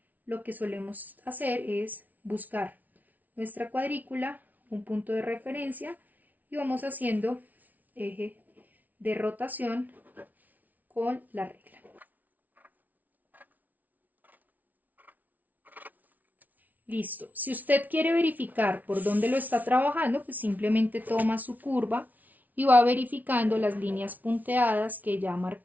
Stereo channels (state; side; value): late; left; 0.077 ms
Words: lo que solemos hacer es buscar nuestra cuadrícula, un punto de referencia y vamos haciendo eje de rotación con la regla. Listo. Si usted quiere verificar por dónde lo está trabajando, pues simplemente toma su curva y va verificando las líneas punteadas que ya